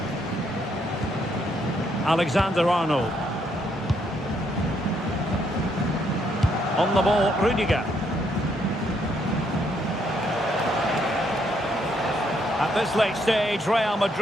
Alexander-Arnold. On the ball, Rudiger. At this late stage, Real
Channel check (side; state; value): both; normal; correlation 0.73